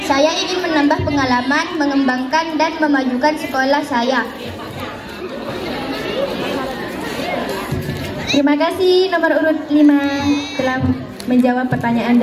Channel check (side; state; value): both; identical; correlation 1.00